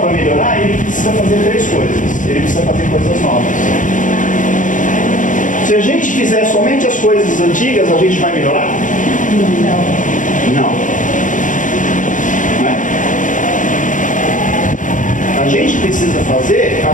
melhorar, ele precisa fazer 3 coisas. Ele precisa fazer coisas novas. Se a gente fizer somente as coisas antigas, a gente vai melhorar? Não. Não é? A gente precisa fazer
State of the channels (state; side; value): late; right; 0.37 ms